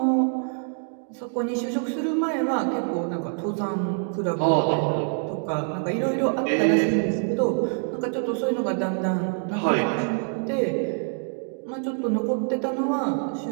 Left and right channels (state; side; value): silent; left; 57 dB below the other